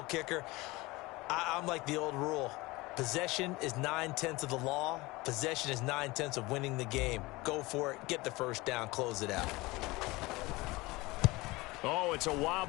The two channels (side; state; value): right; quieter; 21.8 dB